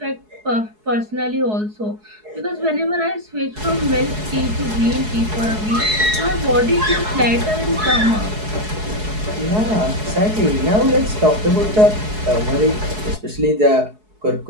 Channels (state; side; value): late; left; 4.7 ms